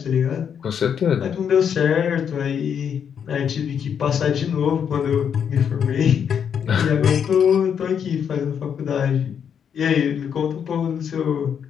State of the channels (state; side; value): quieter; right; 7.8 dB